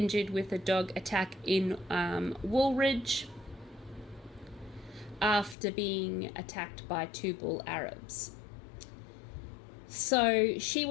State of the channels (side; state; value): right; drops out; at 5.6 s